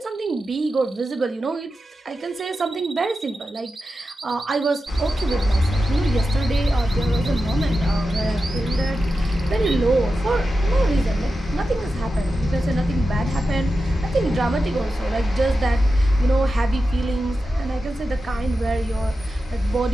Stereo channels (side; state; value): both; normal; correlation 0.91